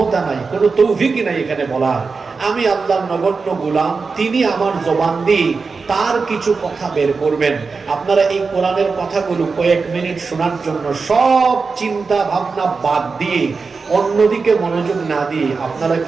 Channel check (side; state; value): left; quieter; 4.6 dB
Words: নাই, কোনো তৌফিকই নাই এখানে বলার। আমি আল্লাহর নগণ্য গোলাম, তিনি আমার জবান দিয়ে তার কিছু কথা বের করবেন। আপনারা এই কোরআনের কথাগুলো কয়েক মিনিট শোনার জন্য সব চিন্তা ভাবনা বাদ দিয়ে অন্যদিকে মনোযোগ না দিয়ে আপনারা